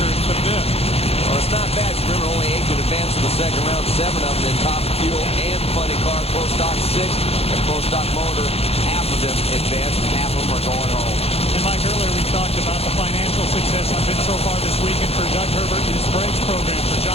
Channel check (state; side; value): late; right; 0.29 ms